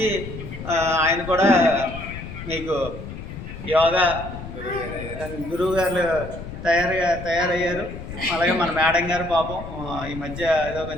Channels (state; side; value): noise; left; rumble, 10 dB below the sound